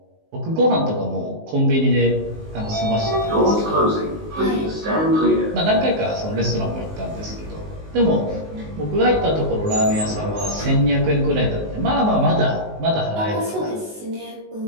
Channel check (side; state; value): left; late; 19 ms